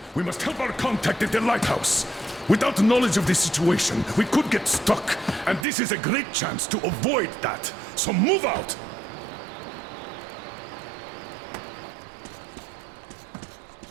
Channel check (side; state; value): left; drops out; at 5.7 s